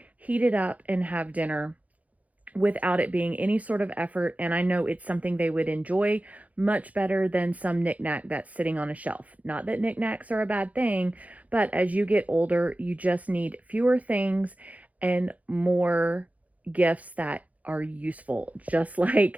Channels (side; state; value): left; late; 0.071 ms